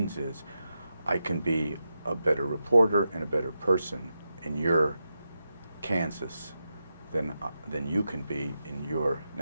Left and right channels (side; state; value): both; inverted; correlation -0.88